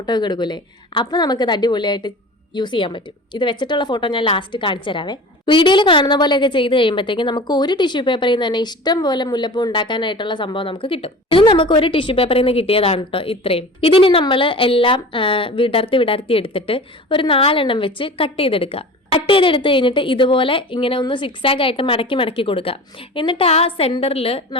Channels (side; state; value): both; normal; correlation 0.37